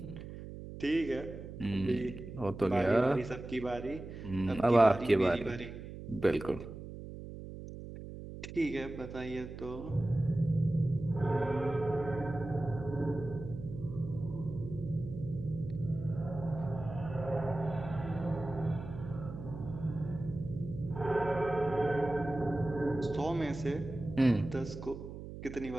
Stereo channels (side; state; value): right; noise; hum, 11 dB below the sound